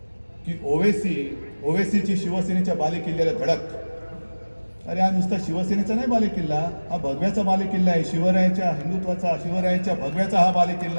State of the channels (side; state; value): both; inverted; correlation -1.00